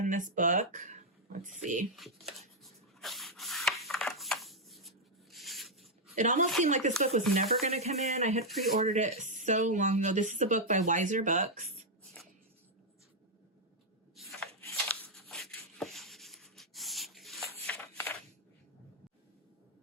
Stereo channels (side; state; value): both; normal; correlation -0.01